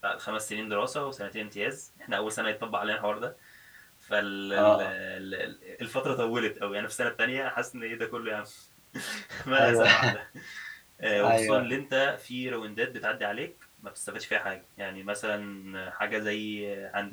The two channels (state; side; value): identical; both; correlation 1.00